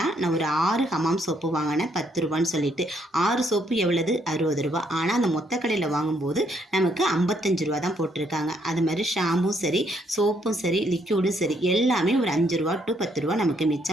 நான் ஒரு 6 ஹமாம் சோப்பு வாங்கினேன் 10 ரூபான்னு சொல்லிட்டு. 6 சோப்பு எவ்வளவு 60 ரூபா. ஆனால் அந்த மொத்த கடையில் வாங்கும்போது நமக்கு 55 ரூபா தான் போட்டிருக்காங்க. அது மாதிரி ஷாம்பும் சரி சோப்பும் சரி லிக்யூடும் சரி எல்லாமே ஒரு 5 ரூபா டு 10 ரூபா நமக்கு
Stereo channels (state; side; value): normal; both; correlation 0.71